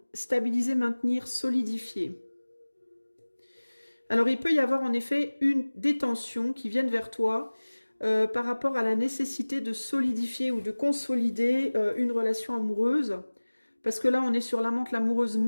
stabiliser, maintenir, solidifier. Alors il peut y avoir en effet des tensions qui viennent vers toi par rapport à la nécessité de solidifier ou de consolider une relation amoureuse. Parce que là on est sur l'amante, l'amoureuse,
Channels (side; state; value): both; inverted; correlation -1.00